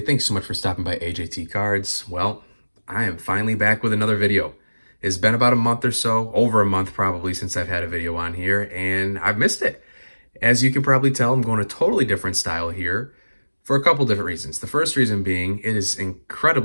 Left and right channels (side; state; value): both; inverted; correlation -1.00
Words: Thanks so much for stopping by AJT Cards. Well, I am finally back with another video. It's been about a month or so, over a month probably, since I've had a video on here, and I've missed it. As you can probably tell, I'm going a totally different style here for a couple different reasons. The first reason being, it is